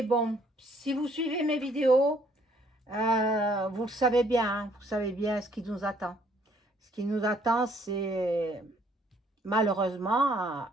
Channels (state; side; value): normal; both; correlation 0.64